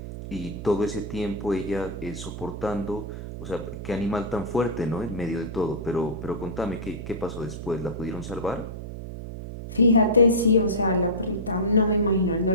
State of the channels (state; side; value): noise; right; hum, 9 dB below the sound